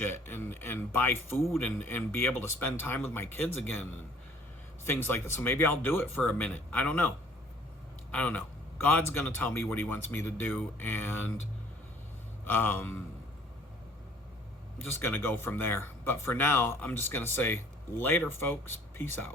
and buy food and be able to spend time with my kids again and things like that. So maybe I'll do it for a minute. I don't know. God's going to tell me what he wants me to do, and I'm just going to go from there. But for now, I'm just going to say later, folks. Peace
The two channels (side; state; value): both; normal; correlation 0.55